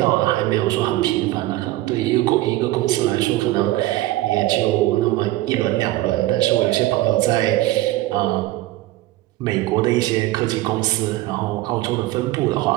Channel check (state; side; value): quieter; left; 16.6 dB